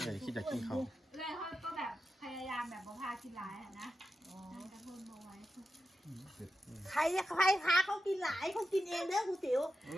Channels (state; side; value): normal; both; correlation 0.89